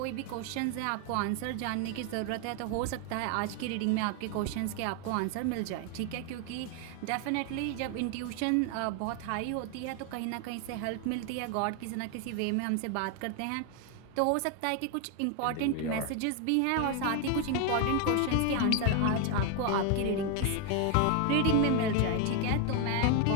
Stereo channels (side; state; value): both; different; correlation 0.01